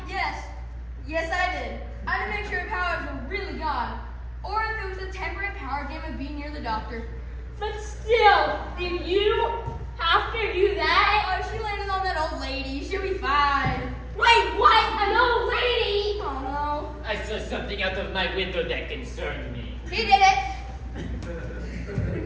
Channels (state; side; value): identical; both; correlation 1.00